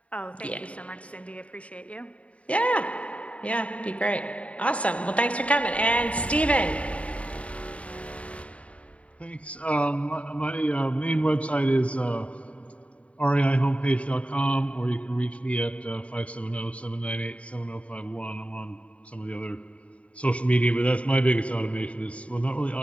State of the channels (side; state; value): right; late; 0.065 ms